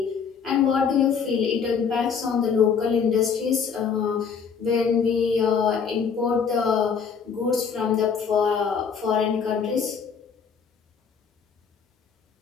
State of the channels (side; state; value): right; quieter; 6.4 dB